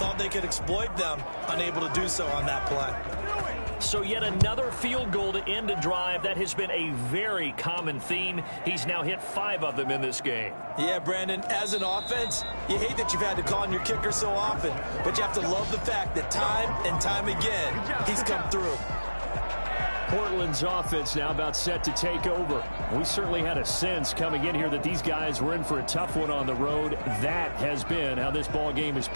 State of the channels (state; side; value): inverted; both; correlation -1.00